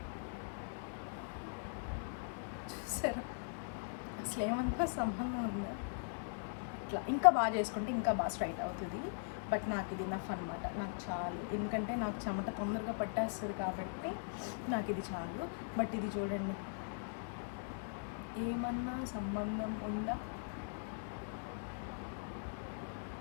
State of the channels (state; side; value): silent; right; digital silence